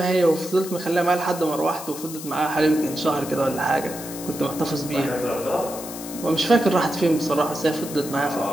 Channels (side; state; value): left; noise; hiss, 12 dB below the sound